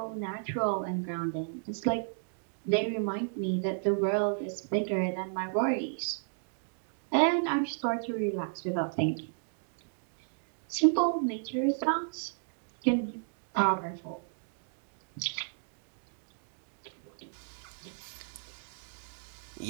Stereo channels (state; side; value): silent; left; digital silence